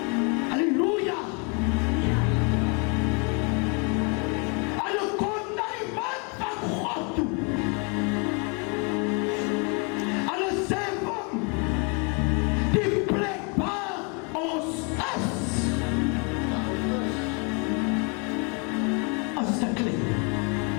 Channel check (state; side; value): quieter; right; 34.4 dB